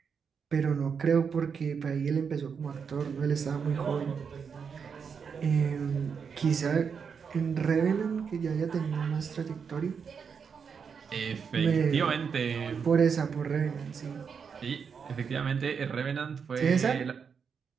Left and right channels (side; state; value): left; quieter; 6.3 dB